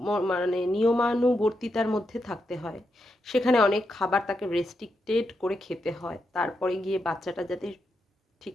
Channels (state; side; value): normal; both; correlation 0.84